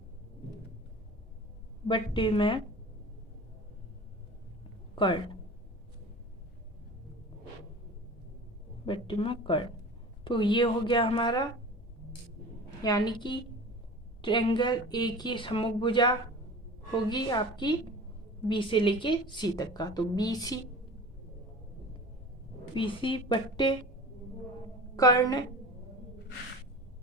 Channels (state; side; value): normal; both; correlation 0.37